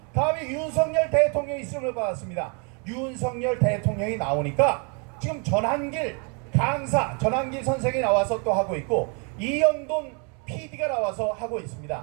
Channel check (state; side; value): quieter; left; 36.3 dB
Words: 다음에 윤석열 대통령이 쓰임을 받았습니다. 윤석열 대통령이 나오니까 지금 전한길 강사 전한길 선생이 나와서 또 하고 있고 이영돈 PD가 나와서 하고